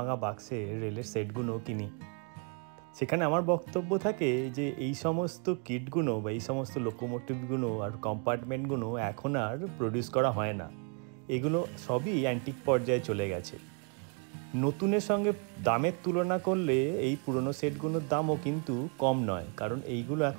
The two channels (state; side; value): quieter; left; 38.9 dB